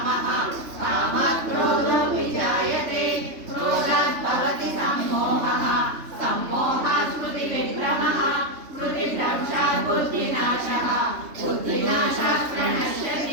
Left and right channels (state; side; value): late; left; 3.3 ms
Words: कामात् क्रोधो विजायते क्रोधात् भवति सम्मोहः सम्मोहात् स्मृतिविभ्रमः स्मृतिभ्रंशात् बुद्धिनाशः बुद्धिनाशात्